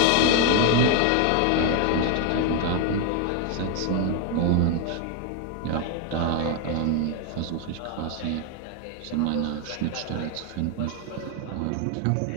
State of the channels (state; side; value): different; both; correlation 0.01